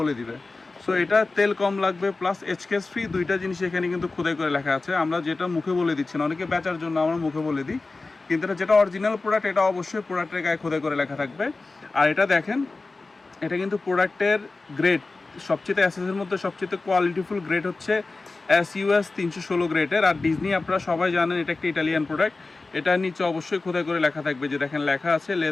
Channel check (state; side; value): quieter; right; 3.6 dB